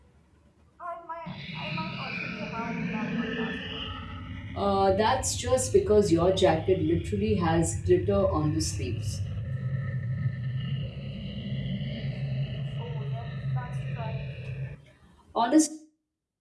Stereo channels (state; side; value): identical; both; correlation 1.00